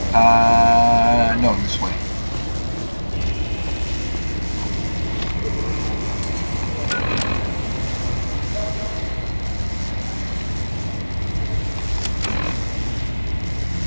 No, this way.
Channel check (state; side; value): inverted; both; correlation -1.00